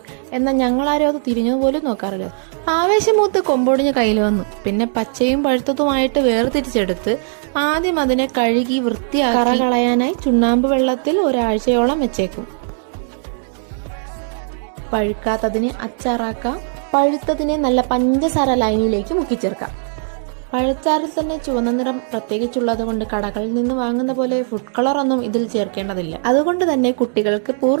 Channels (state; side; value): silent; left; digital silence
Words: എന്നാൽ ഞങ്ങളാരും അത് തിരിഞ്ഞതുപോലും നോക്കാറില്ല. ആവേശമൂത്ത് കൊമ്പൊടിഞ്ഞ് കയ്യിൽ വന്നു. പിന്നെ പച്ചയും പഴുത്തതുമായിട്ട് വേർതിരിച്ചെടുത്ത് ആദ്യം അതിനെ കഴുകി വൃത്തിയാക്കി കറ കളയാനായി ചുണ്ണാമ്പ് വെള്ളത്തിൽ ഒരാഴ്ചയോളം വെച്ചേക്കും. പഴുക്കാത്തതിനെ അച്ചാറാക്കാം, പഴുത്തതിനെ നല്ല പഞ്ചസാര ലൈനിലേക്ക് മുക്കിച്ചേർക്കാം. പഴച്ചാറിൽ തന്നെ ചുവന്ന നിറം പ്രത്യേകിച്ചുള്ളത് കൊണ്ട് കടകളിൽ നിന്ന് വാങ്ങുന്ന പോലെ ഫുഡ് കളർ ഒന്നും ഇതിൽ ചേർക്കേണ്ടതില്ല. അതുകൊണ്ട് തന്നെ കുട്ടികൾക്ക്